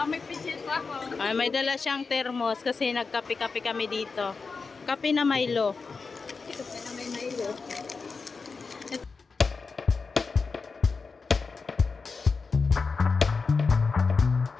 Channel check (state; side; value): quieter; right; 4.6 dB